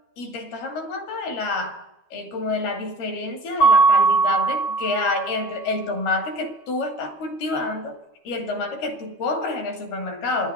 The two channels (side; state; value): right; late; 13 ms